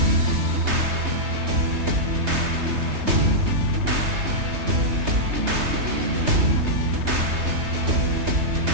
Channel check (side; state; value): left; late; 3.3 ms